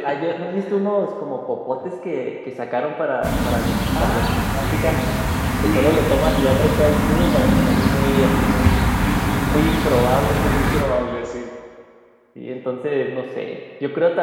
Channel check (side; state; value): both; identical; correlation 1.00